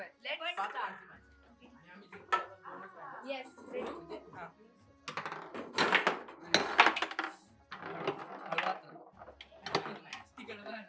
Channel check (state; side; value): identical; both; correlation 1.00